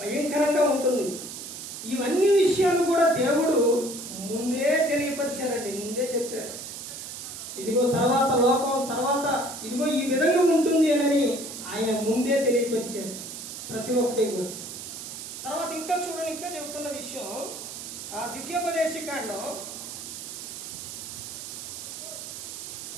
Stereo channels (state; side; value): noise; right; hiss, 9 dB below the sound